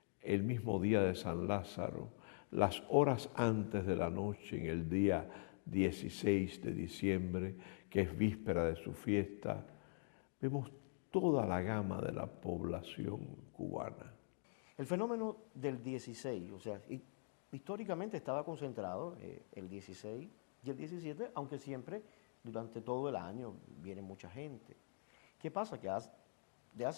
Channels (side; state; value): right; silent; digital silence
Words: el mismo día de San Lázaro, las horas antes de la noche, en el día 16 de diciembre, que es víspera de su fiesta, vemos toda la gama de la población cubana. El fenómeno del 16, o sea, históricamente estaba concentrado el 16 y el 17, aunque siempre durante todo el año viene mucha gente. ¿Qué pasa? Que de